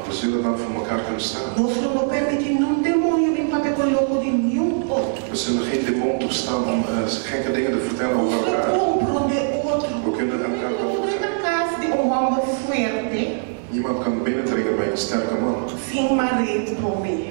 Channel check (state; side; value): silent; left; digital silence